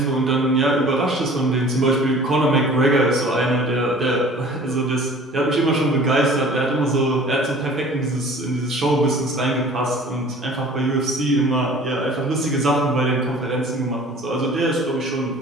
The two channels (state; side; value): normal; both; correlation 0.47